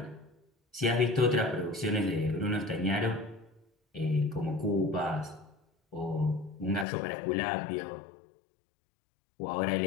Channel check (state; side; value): drops out; right; at 6.9 s